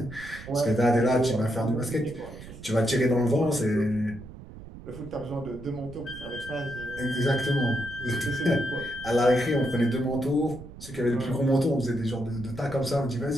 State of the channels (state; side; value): noise; right; rumble, 15 dB below the sound